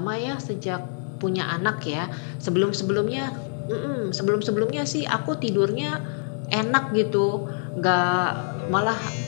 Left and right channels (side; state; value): right; silent; 58 dB below the other